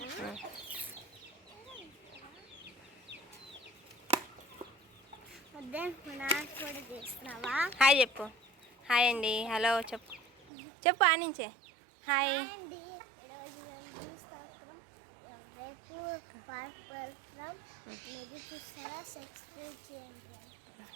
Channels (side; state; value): left; drops out; at 10.5 s